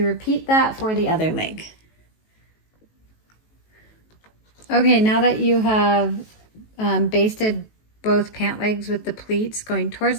repeat that for the other leg. Okay, now that you have basted both pant legs with the pleats going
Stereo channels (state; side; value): late; right; 18 ms